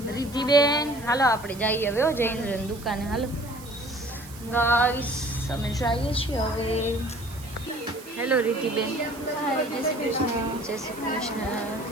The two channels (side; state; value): right; noise; hiss, 18 dB below the sound